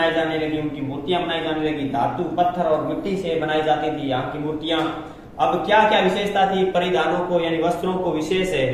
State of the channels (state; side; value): identical; both; correlation 1.00